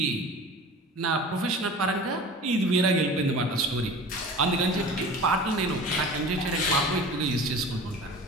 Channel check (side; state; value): both; normal; correlation 0.38